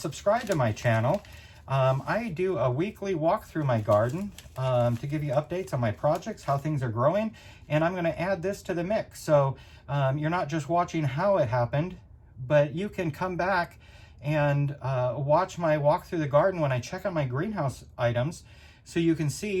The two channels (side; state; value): both; identical; correlation 1.00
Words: to my channel. I do a weekly walk through my garden to give you updates on my projects, how things are growing, and I'm going to add this to the mix. So you're not just watching how it happened, but you can come back and watch my walk through the garden when I check on my greenhouse items, so you can